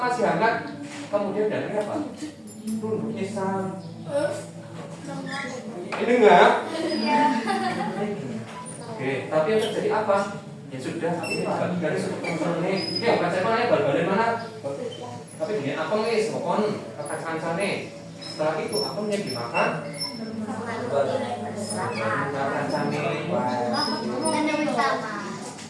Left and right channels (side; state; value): both; identical; correlation 1.00